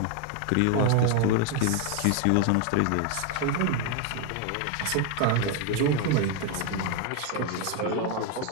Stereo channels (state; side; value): different; both; correlation 0.01